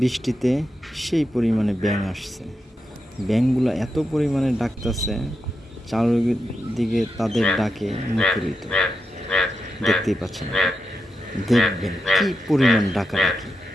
বৃষ্টিতে সেই পরিমাণে ব্যাঙ আসছে। ব্যাঙগুলো এত পরিমাণে ডাকতেছে, চারিদিকে তাদের ডাকে মুখরিত। দেখতেই পাচ্ছেন, দেখবেন কি পরিমাণ ডাকাডাকি,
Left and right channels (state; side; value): normal; both; correlation 0.88